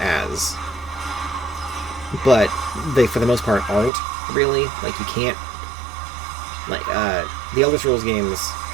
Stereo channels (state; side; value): drops out; left; at 3.9 s